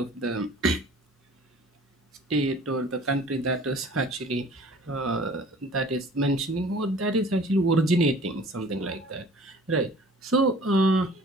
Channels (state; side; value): normal; both; correlation 0.48